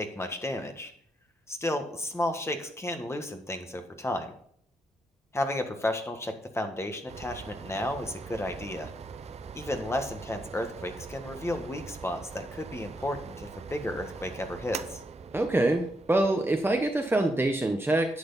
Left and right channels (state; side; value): normal; both; correlation 0.79